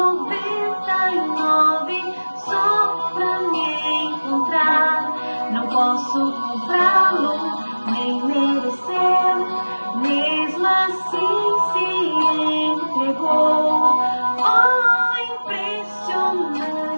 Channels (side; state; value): both; inverted; correlation -1.00